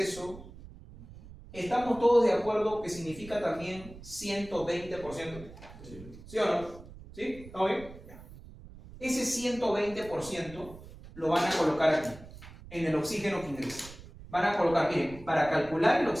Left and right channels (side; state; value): right; noise; rumble, 17 dB below the sound